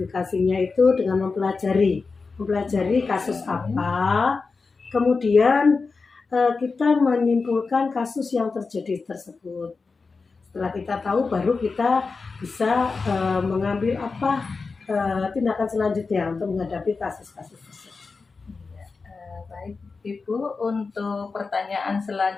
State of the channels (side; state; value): right; quieter; 4.4 dB